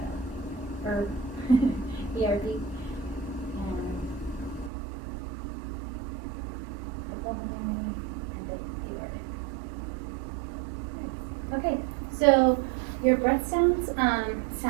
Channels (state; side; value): drops out; left; at 4.7 s